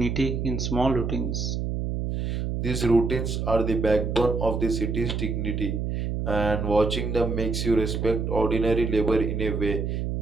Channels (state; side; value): noise; right; hum, 2 dB below the sound